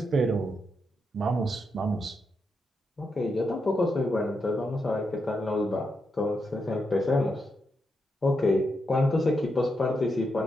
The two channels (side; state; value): both; normal; correlation 0.83